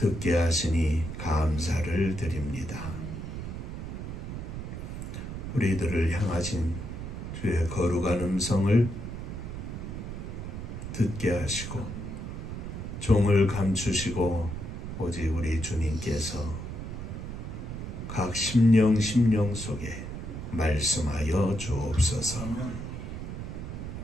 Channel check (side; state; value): right; noise; rumble, 7 dB below the sound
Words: 하시니 감사를 드립니다. 우리들을 향하신 주의 거룩한 음성을 듣게 하시고 종을 감추시고 오직 우리 주님께서 각 심령 속에 말씀하여 주옵소서.